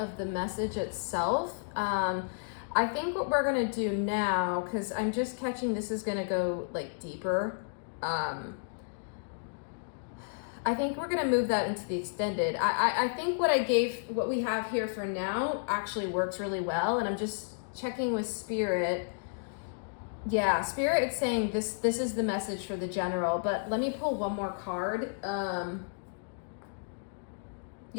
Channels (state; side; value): silent; right; digital silence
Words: the message itself. I think what we're gonna do now, because I'm just catching this is gonna go like deeper. I think we're gonna move that into the extended. I think what we have here for now actually works really well, and I'm just checking with Spirit. Yeah, Spirit is saying this is the message for the general, but let me pull one more card.